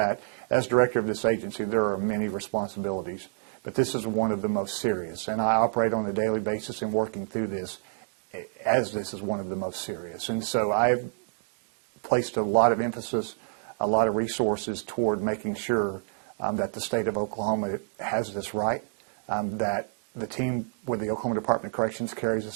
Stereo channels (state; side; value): silent; left; digital silence